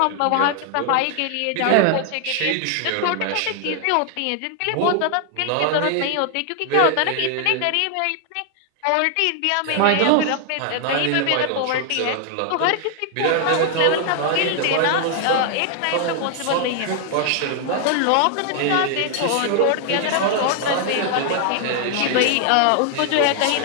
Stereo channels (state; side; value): different; both; correlation 0.00